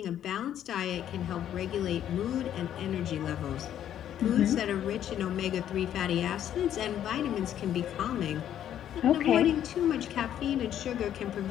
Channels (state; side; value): quieter; right; 10.6 dB